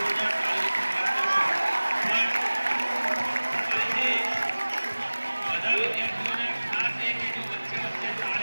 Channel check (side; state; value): both; inverted; correlation -1.00